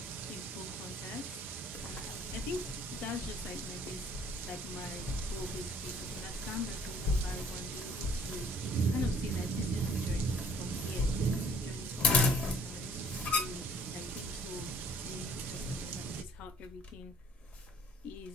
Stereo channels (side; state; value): both; normal; correlation 0.56